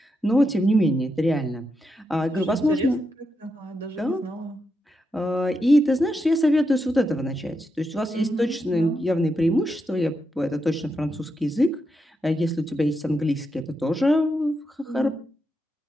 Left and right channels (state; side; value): normal; both; correlation 0.85